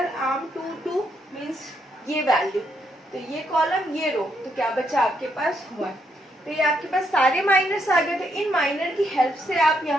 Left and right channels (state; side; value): normal; both; correlation 0.76